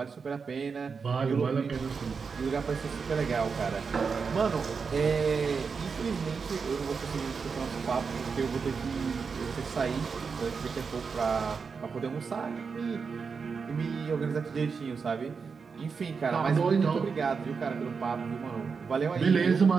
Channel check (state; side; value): quieter; left; 5.4 dB